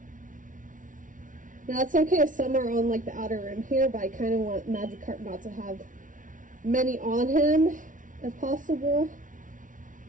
Now it's okay if some are on like the outer rim here, but I kind of want Magikarp not to have many on him if possible.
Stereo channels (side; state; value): left; late; 0.38 ms